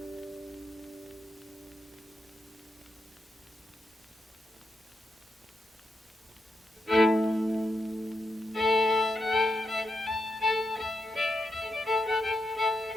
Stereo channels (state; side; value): normal; both; correlation 0.84